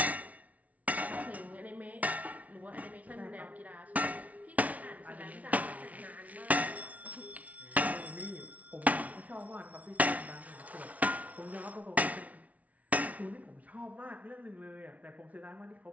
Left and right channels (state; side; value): late; left; 0.069 ms